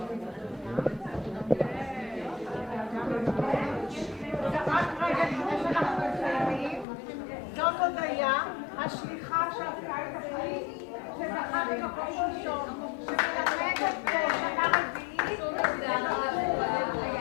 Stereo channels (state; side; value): drops out; right; at 6.9 s